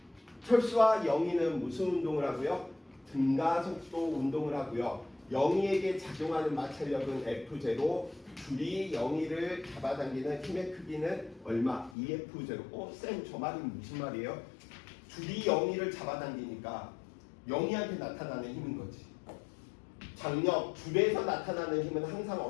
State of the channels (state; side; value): drops out; right; at 12.0 s